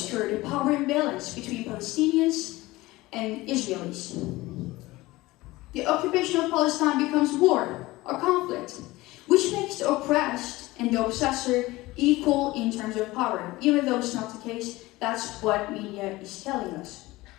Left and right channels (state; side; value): quieter; right; 19.6 dB